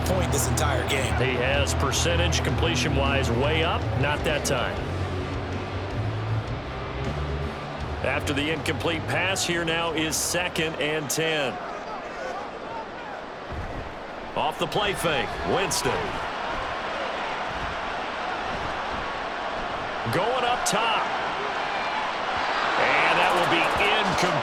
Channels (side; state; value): both; identical; correlation 1.00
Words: point this entire game. He has percentage completion-wise way up. Not that time. After the incomplete pass, here now is 2nd and 10. Off the play fake, Winston. Going up top. And that will be